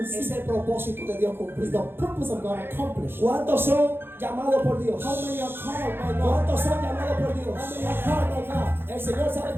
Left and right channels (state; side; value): late; left; 0.10 ms